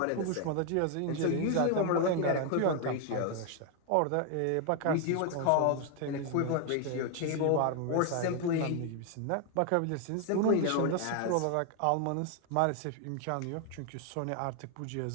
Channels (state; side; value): different; both; correlation 0.00